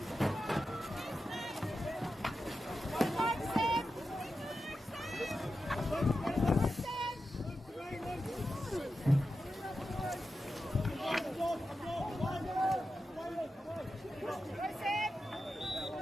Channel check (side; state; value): both; normal; correlation 0.90